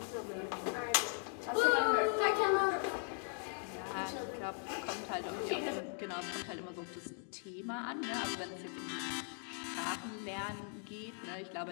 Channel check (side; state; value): right; silent; 52 dB below the other